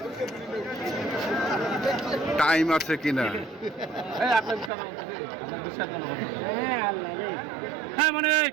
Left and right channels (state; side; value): drops out; left; at 4.7 s